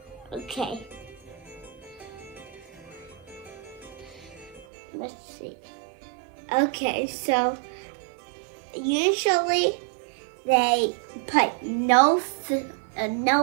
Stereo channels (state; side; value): drops out; left; at 4.7 s